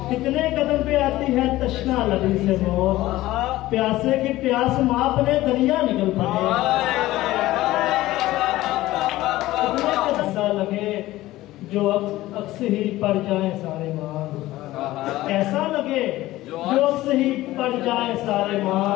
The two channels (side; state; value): right; quieter; 16.7 dB